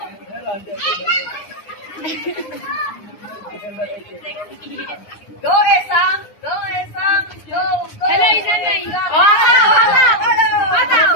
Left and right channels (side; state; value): right; late; 9.7 ms